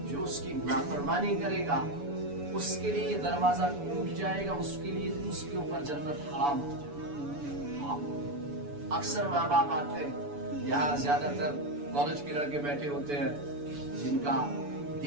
جو اس کی نافرمانی کرے گا، اس کے لیے یہ دروازہ ٹوٹ جائے گا، اس کے لیے اس کے اوپر جنت حرام ہو جائے گا. اکثر ماں باپ آتے ہیں، یہاں زیادہ تر کالج کے لڑکے بیٹھے ہوتے ہیں، جن کا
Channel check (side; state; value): left; late; 7.0 ms